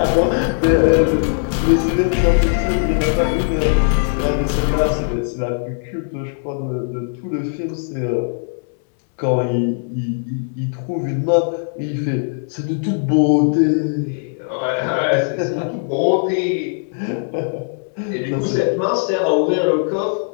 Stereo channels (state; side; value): silent; right; 66 dB below the other